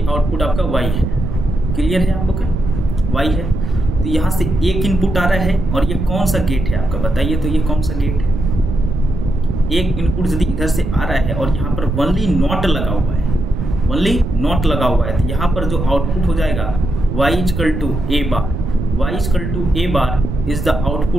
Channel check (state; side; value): noise; right; rumble, 4 dB below the sound